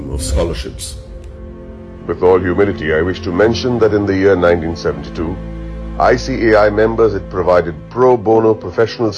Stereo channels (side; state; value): both; identical; correlation 1.00